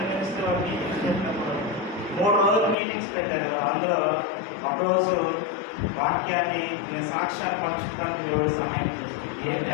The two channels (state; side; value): drops out; right; at 2.8 s